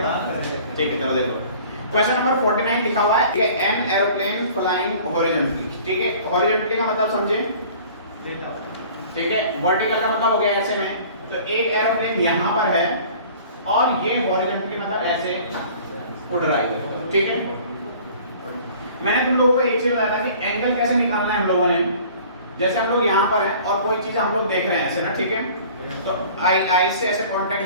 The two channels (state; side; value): inverted; both; correlation -0.48